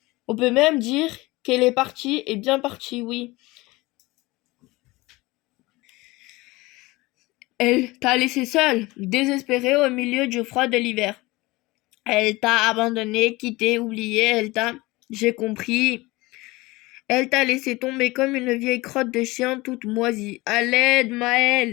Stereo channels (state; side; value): quieter; right; 21.5 dB